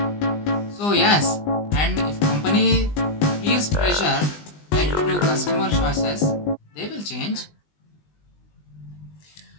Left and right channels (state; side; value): late; right; 20 ms